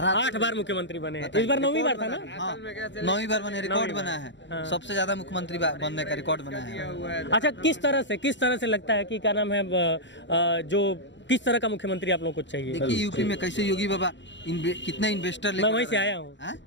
8 बार मुख्यमंत्री बने, इस बार 9वीं बार था ना? हाँ, 9वीं बार बने, रिकॉर्ड बना है। सबसे ज्यादा मुख्यमंत्री बनने का रिकॉर्ड बना है। अच्छा, किस तरह से लगता है कि क्या नाम है, जो किस तरह का मुख्यमंत्री आप लोगों को चाहिए? देखिए, यूपी में कैसे योगी बाबा कितने इन्वेस्टर मैं वहीं से आया हूँ।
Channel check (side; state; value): right; late; 0.53 ms